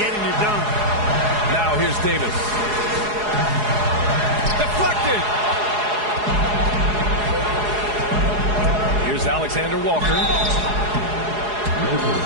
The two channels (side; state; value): left; late; 4.8 ms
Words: it done. Now here's Davis. Deflected. Here's Alexander Walker.